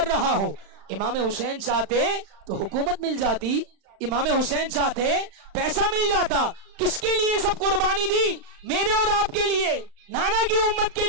رہا ہوں، امام حسین چاہتے تو حکومت مل جاتی، امام حسین چاہتے پیسہ مل جاتا. کس کے لیے سب قربانی دی؟ میرے اور آپ کے لیے، نانا کی امت کے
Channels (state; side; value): late; left; 35 ms